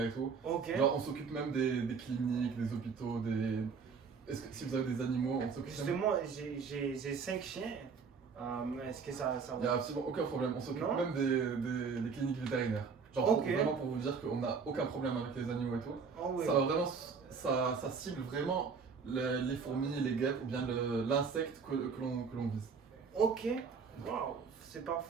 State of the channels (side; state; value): left; quieter; 5.5 dB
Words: et tout. Ok. Genre, on s'occupe même des cliniques, des hôpitaux, Est-ce que si vous avez des animaux, on s'occupe même... Justement, j'ai 5 chiens. Mais est-ce que ça Il n'y a va? absolument aucun problème. On s'occupe Non. même des cliniques vétérinaires. Genre, Ok. vraiment pour vous dire qu'on n'a aucun problème avec les animaux et tout. Oh oui. Ça va vraiment, ça cible vraiment les fourmis, les guêpes ou bien l'insecte que l'on vise. Ok. Waouh, c'est